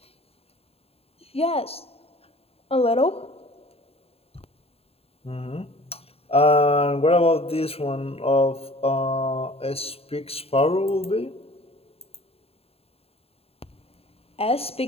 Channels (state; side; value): late; right; 0.29 ms